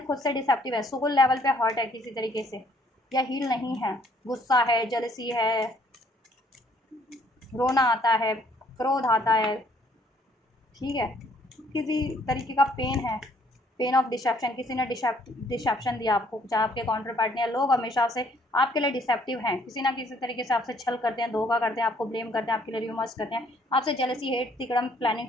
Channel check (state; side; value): normal; both; correlation 0.63